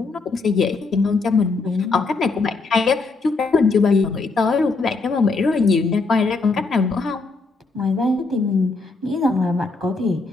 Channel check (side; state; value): right; quieter; 3.9 dB